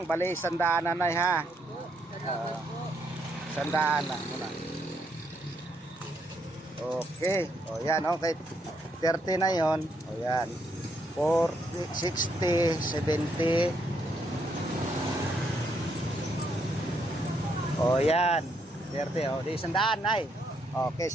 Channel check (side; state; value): both; normal; correlation 0.75